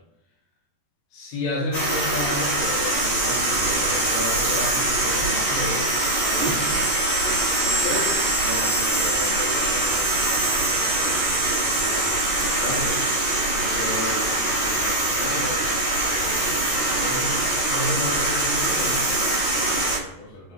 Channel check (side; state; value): right; late; 15 ms